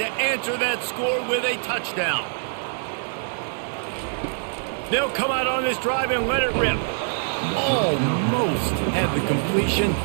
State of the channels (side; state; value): left; silent; digital silence